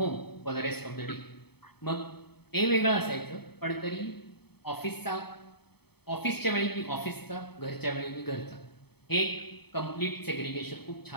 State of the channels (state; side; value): late; right; 0.97 ms